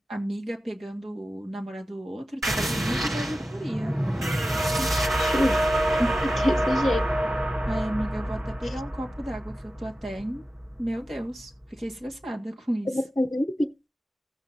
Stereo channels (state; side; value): normal; both; correlation 0.94